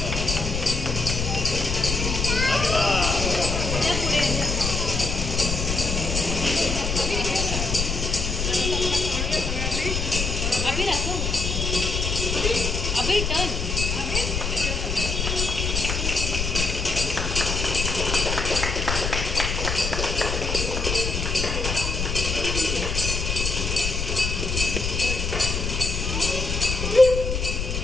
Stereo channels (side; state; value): left; noise; rumble, 2 dB below the sound